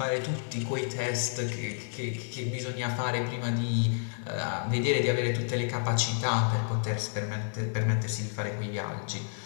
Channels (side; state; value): right; silent; digital silence